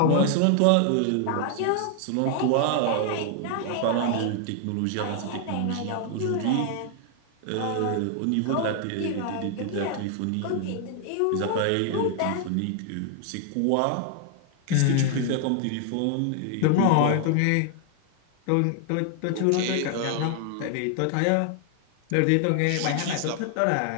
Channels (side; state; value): both; different; correlation 0.00